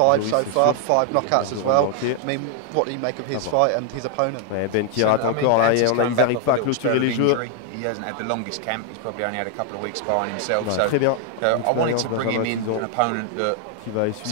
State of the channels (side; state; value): both; different; correlation 0.00